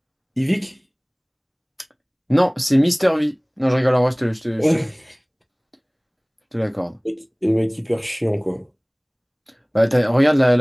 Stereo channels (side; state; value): both; identical; correlation 1.00